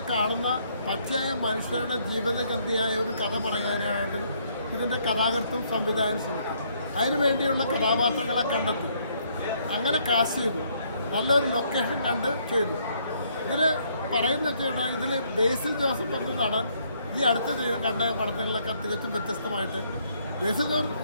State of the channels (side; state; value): both; inverted; correlation -0.68